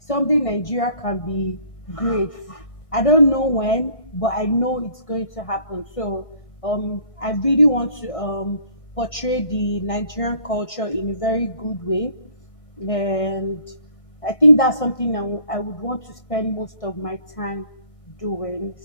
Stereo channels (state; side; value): late; right; 1.6 ms